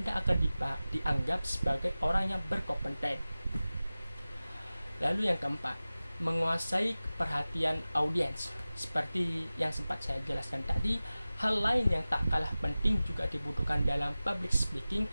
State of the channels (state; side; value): inverted; both; correlation -0.97